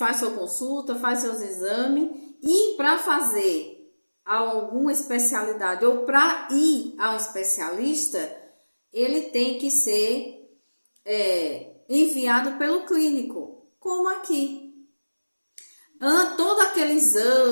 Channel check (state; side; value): inverted; both; correlation -1.00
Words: sua consulta, faz seus exames, e para fazer alguma especialidade ou para ir a um especialista, ele tem que ser enviado pelo clínico, como aqui. Todo aquele